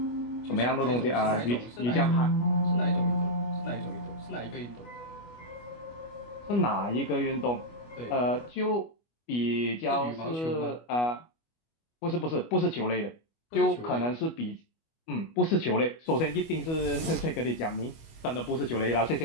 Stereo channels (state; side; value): late; right; 25 ms